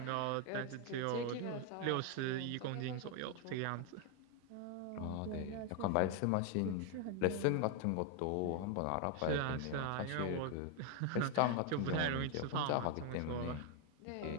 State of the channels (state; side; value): different; both; correlation 0.01